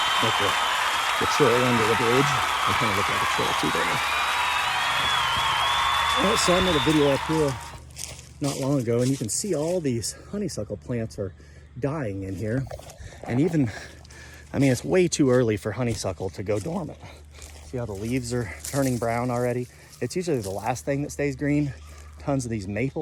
Like the trail under the bridge. I kind of look like a trail too, don't I? All right, so I made a video up here not long ago, and you can see all these honeysuckle plants are dying in here. And even, I mean, it's way too early for honeysuckle to go dormant. See how the leaves are turning brown already? It's usually the last thing that stays green. Tons of these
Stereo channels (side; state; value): both; identical; correlation 1.00